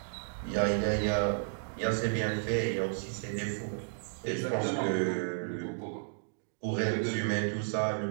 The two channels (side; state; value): left; silent; digital silence